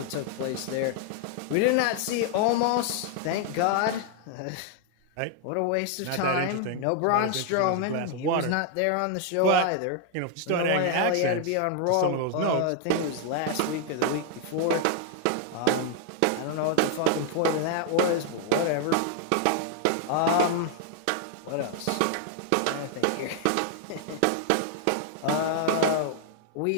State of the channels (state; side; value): different; both; correlation 0.00